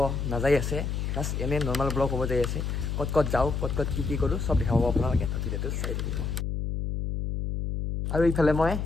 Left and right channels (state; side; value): noise; left; hum, 2 dB below the sound